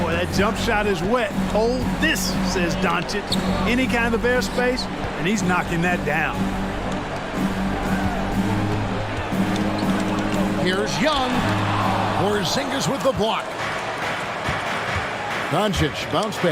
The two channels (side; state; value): both; identical; correlation 1.00